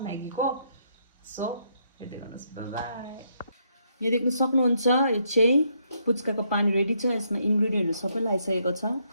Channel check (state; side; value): inverted; both; correlation -0.74